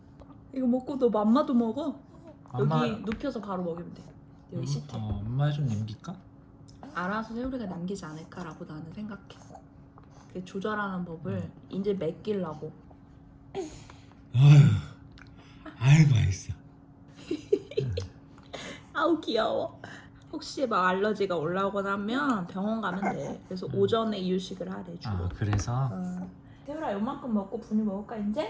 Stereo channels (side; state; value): both; identical; correlation 1.00